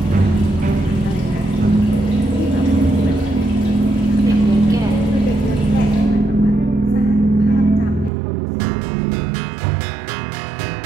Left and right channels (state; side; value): drops out; left; at 8.1 s